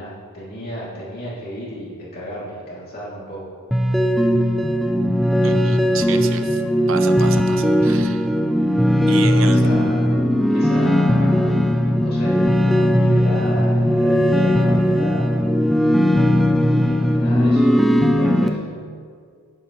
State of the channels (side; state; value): both; normal; correlation 0.91